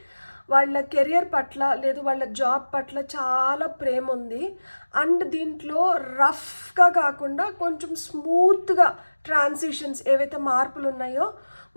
వాళ్ళ కెరియర్ పట్ల లేదు వాళ్ళ జాబ్ పట్ల చాలా ప్రేమ ఉంది. అండ్ దీంట్లో రఫ్గా కాకుండా కొంచెం స్మూత్గా ట్రాన్సిషన్స్ ఏవైతే మార్పులు ఉన్నాయో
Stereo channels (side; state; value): both; inverted; correlation -1.00